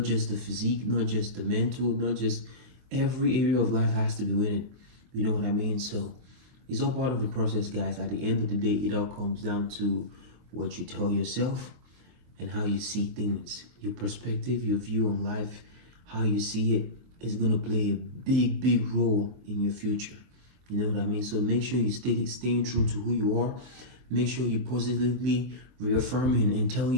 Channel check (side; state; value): left; late; 23 ms